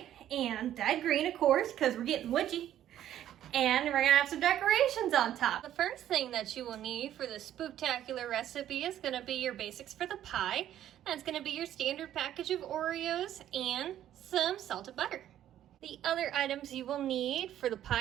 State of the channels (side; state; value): left; quieter; 11.6 dB